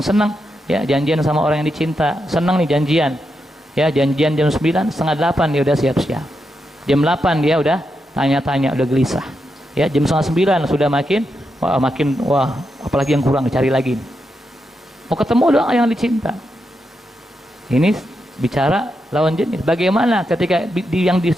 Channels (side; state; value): both; normal; correlation 0.85